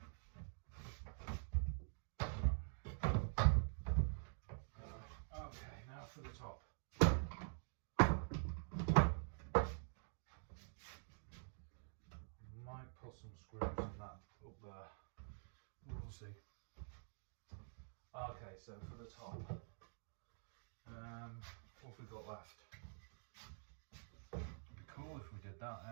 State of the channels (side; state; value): left; silent; digital silence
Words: Okay, now for the top. Might put some screws in that up there. We'll see. Okay, so for the top, what have we got left? It'd be cool if we did that,